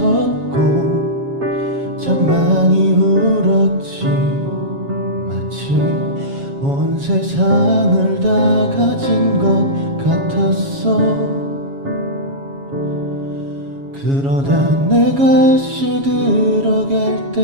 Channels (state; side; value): late; left; 7.3 ms